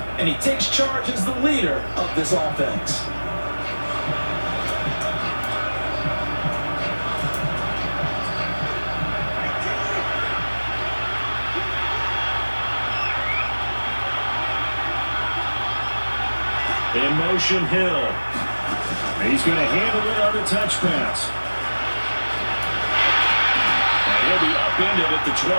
and he takes charge as the leader of this offense. In motion, Hill. He's going to handle it on the touch pass. And he'll be upended at the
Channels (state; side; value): inverted; both; correlation -1.00